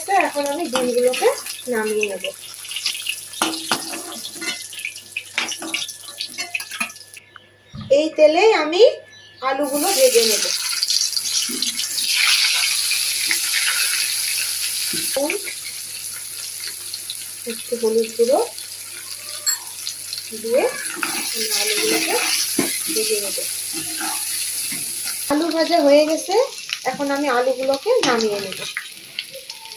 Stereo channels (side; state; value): both; identical; correlation 1.00